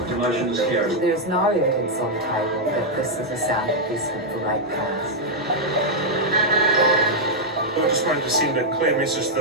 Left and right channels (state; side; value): normal; both; correlation -0.04